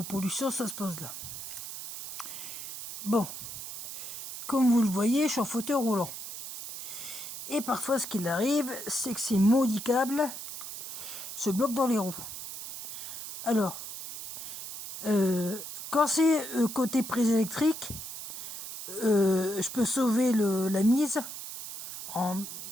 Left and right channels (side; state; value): right; noise; hiss, 9 dB below the sound